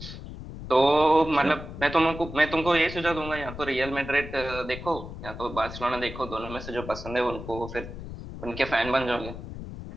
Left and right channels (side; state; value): left; noise; rumble, 11 dB below the sound